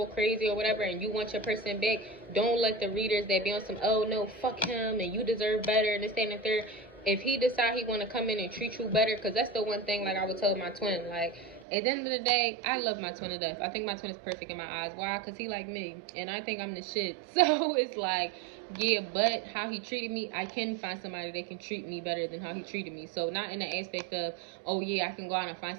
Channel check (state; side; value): drops out; left; at 11.7 s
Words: crazy or whatever and you want your person back, don't let the readers that be on some, oh no, fuck him and you deserve better and this, that, and the third. If he decide he want to come in and treat you better, because that's the one thing, like I would tell my twin, like, at the end of the day, I love my twin to death. I think my twin is perfect in my eyes. Why? Because he like me, and I think I'm the shit. So it's like, yeah, but how he treated me, I can find somebody that can treat me better than how he treated me. So not in the aspect of, oh yeah, I can go out and find